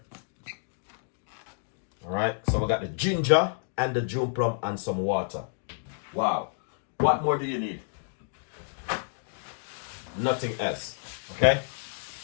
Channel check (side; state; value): right; silent; digital silence